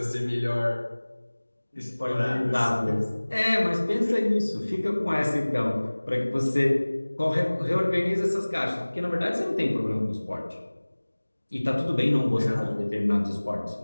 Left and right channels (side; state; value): both; inverted; correlation -1.00